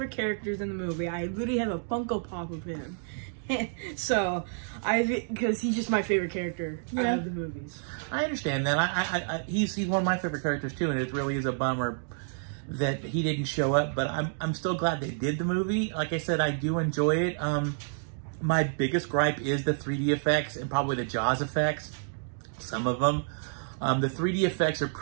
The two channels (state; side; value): silent; left; digital silence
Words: characters in the movie. I literally have a Funko Pop of him. So, because he's just my favorite character out of the movies. I understand that. He's one of my favorite characters too, and it really is a bummer that he didn't show up. But I'm still glad they did the movie. Like I said, I do enjoy it. My biggest gripe is the 3D effects and probably the Jaws effects. Some of them. The 3D effects are